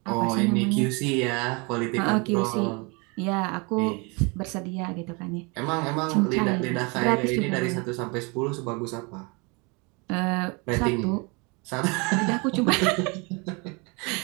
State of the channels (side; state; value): left; quieter; 30.0 dB